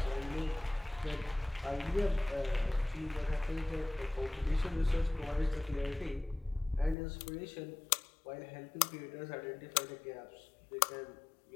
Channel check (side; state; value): right; drops out; at 7.0 s